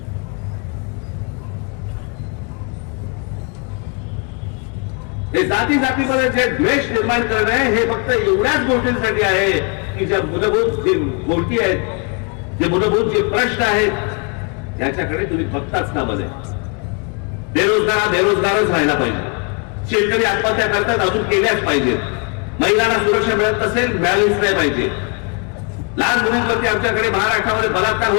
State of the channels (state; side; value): quieter; right; 33.9 dB